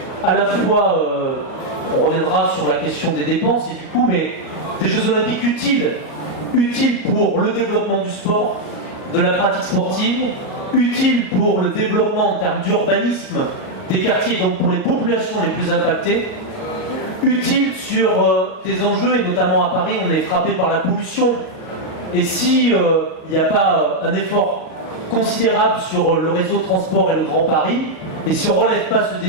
À la fois, on reviendra sur la question des dépenses et du coup, mais des Jeux Olympiques utiles pour le développement du sport, de la pratique sportive, utiles pour le développement en termes d'urbanisme des quartiers, donc pour les populations les plus impactées, utiles sur des enjeux, et notamment à Paris, on est frappé par la pollution. Et si il n'y a pas un effort considérable sur le réseau de transport et le Grand Paris, et si on ne relève pas ce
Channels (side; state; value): right; late; 38 ms